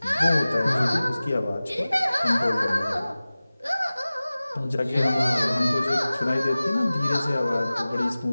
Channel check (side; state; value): both; inverted; correlation -0.98